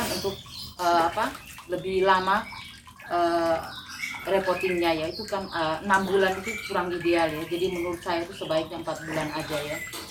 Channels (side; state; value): both; identical; correlation 1.00